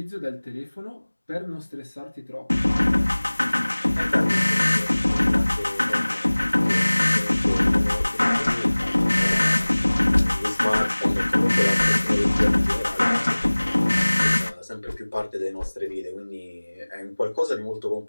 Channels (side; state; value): both; inverted; correlation -1.00